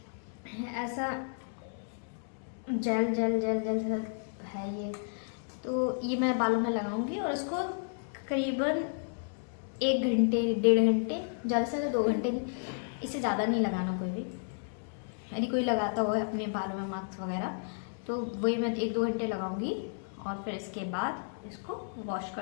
ऐसा gel gel gel gel gel है ये। तो ये मैं बालों में लगाऊंगी और इसको करीबन 1 घंटे 1.5 घंटे, ज़्यादा से ज़्यादा 2 घंटे, इससे ज़्यादा नहीं लगाना कोई भी। यदि कोई लगाता हो अपने बालों में मास्क वगैरह तो वही मैं 1-2 घंटे लगाऊंगी और फिर इसके बाद इसको वॉश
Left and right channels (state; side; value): silent; right; digital silence